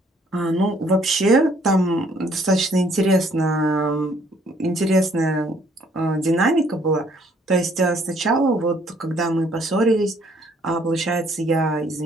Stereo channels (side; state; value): both; normal; correlation 0.64